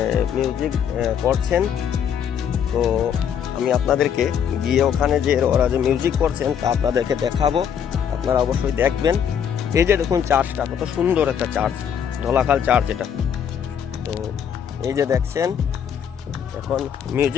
মিউজিক করছেন। তো আমি আপনাদেরকে গিয়ে ওখানে যে ওরা যে মিউজিক করছেন তা আপনাদেরকে দেখাবো, আপনারা অবশ্যই দেখবেন। এই যে দেখুন চার্চটা কত সুন্দর একটা চার্চ, ধলাখাল চার্চ এটা। তো এই যে দেখছেন এখন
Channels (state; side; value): quieter; right; 8.3 dB